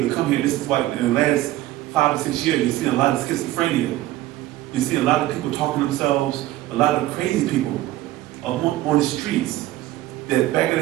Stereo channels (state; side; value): quieter; left; 15.7 dB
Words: to come here. This is why in the last 5 or 6 years, you're seeing a lot of schizophrenia. You see a lot of people talking to themselves, a lot of crazy people on the streets. That back in